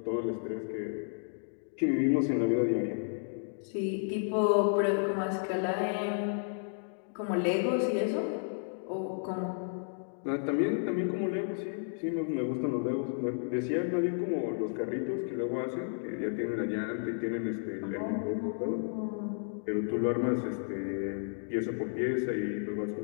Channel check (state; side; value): silent; right; digital silence